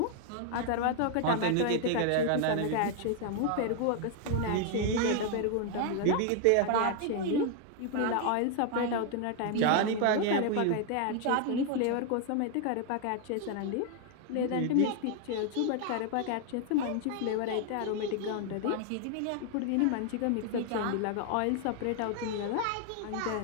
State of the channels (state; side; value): different; both; correlation 0.00